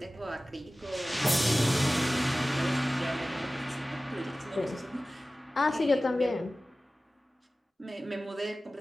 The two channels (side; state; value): both; normal; correlation 0.97